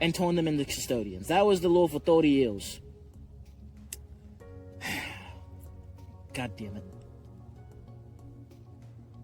turn them into custodians. That was the law for 30 years. God damn it.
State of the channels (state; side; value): identical; both; correlation 1.00